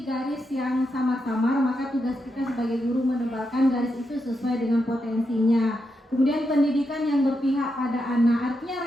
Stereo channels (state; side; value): normal; both; correlation 0.85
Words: garis yang samar-samar, maka tugas kita sebagai guru menebalkan garis itu sesuai dengan potensinya. Kemudian pendidikan yang berpihak pada anak, artinya